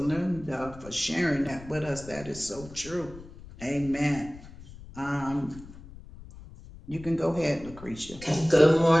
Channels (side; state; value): left; noise; rumble, 17 dB below the sound